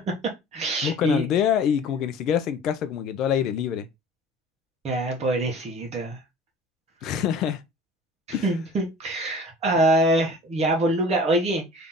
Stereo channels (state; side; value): normal; both; correlation 0.44